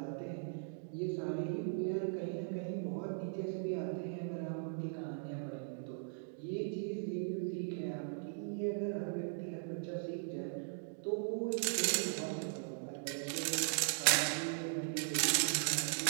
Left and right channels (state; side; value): silent; left; digital silence